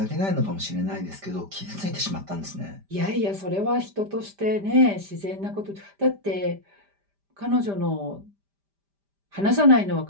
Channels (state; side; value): late; left; 5.0 ms